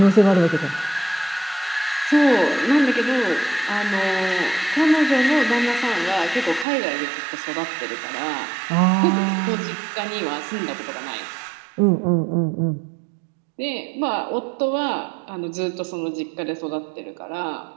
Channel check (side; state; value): left; drops out; at 6.7 s